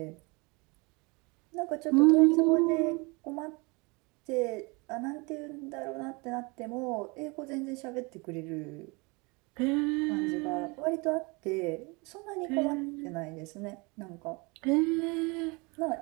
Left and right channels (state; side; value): quieter; left; 28.1 dB